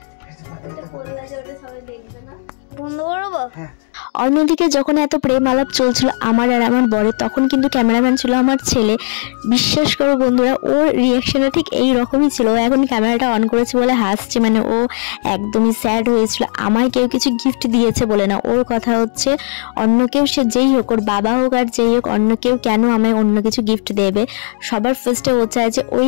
অন্যদিকে যখন এত প্রেম আলাপ চলছিল আমার আর আমার বরের, তখন কিন্তু ক্যামেরাম্যান ছিল আমার ছেলে। বিশ্বাস করো বন্ধুরা, ওর রিয়াকশনটা ঠিক এই রকমই ছিল। ও এখন ক্যামেরাটা অন করেছে বলে হাসছে, মানে ও একদমই স্যাড হয়েছিল। আমায় কেউ কিছু গিফট দিয়েছে বলে না, ওর কথা হচ্ছে অন্য কেউ, সে যেই হোক, ওর বাবা হোক আর যেই হোক, অন্য কেউ কেন আমায় অন্য কিছু গিফট দেবে। সবার ফার্স্টে ও চায় যে ওই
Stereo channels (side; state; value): right; silent; digital silence